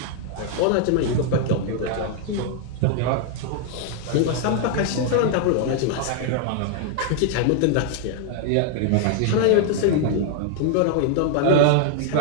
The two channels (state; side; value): different; both; correlation 0.00